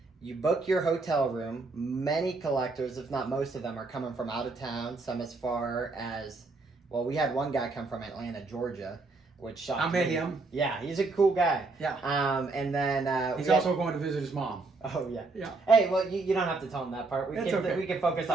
you book your hotel room. Many collectors, if not most of them, are coming from out of town. Some as far as, well, we had one guy come from Atlanta, Georgia, which shocked me. I met him. Yeah, he's a cool guy. Yeah. And then he's also going to visit his mom. Oh yeah. Yeah. Hey, well, you don't have to tell him that part. We can focus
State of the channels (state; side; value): quieter; left; 3.6 dB